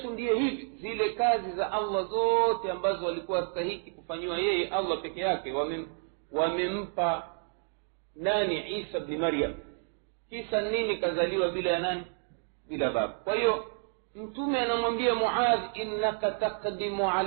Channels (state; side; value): silent; left; 58 dB below the other